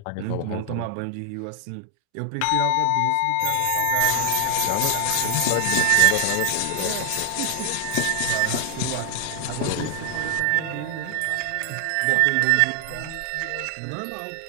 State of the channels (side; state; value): both; different; correlation 0.00